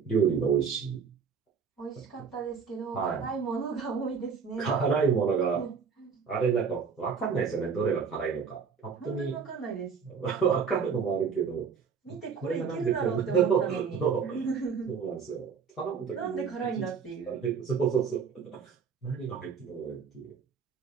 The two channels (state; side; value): quieter; left; 6.1 dB